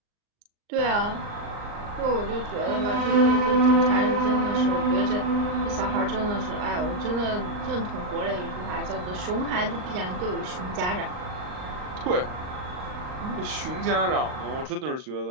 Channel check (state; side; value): late; left; 39 ms